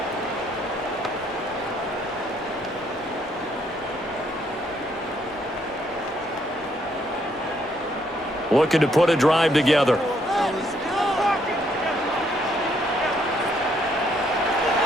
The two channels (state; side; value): noise; left; hum, 30 dB below the sound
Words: Looking to put a drive together.